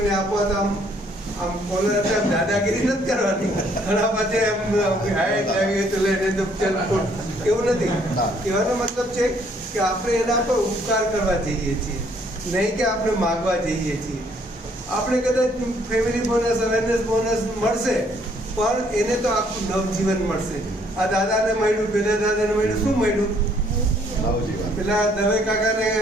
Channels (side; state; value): both; normal; correlation 0.65